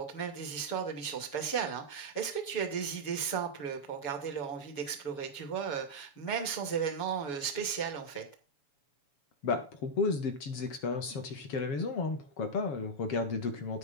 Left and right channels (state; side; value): late; right; 7.1 ms